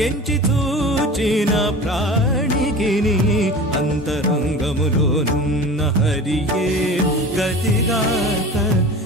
ఎంచి చూచిన ప్రాణికిని అంతరంగములోనున్న హరియే గతిగాక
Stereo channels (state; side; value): normal; both; correlation 0.36